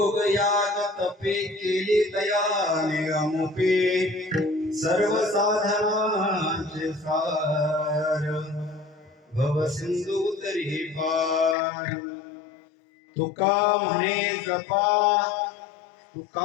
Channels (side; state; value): right; drops out; at 11.6 s